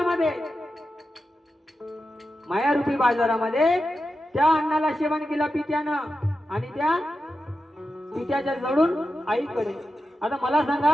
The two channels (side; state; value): both; normal; correlation 0.91